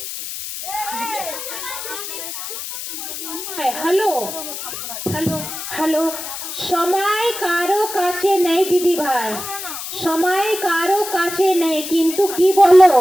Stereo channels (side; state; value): left; noise; hiss, 7 dB below the sound